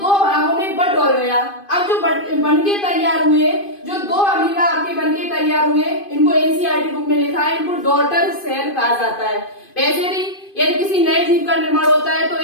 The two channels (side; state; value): right; late; 2.5 ms